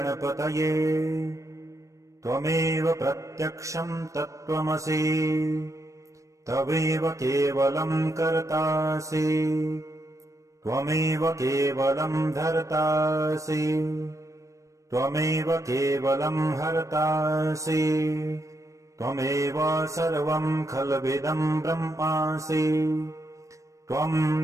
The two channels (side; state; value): left; late; 0.15 ms